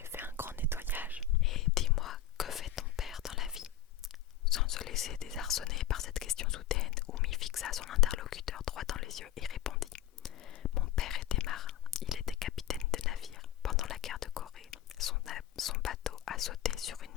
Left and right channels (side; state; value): right; quieter; 10.3 dB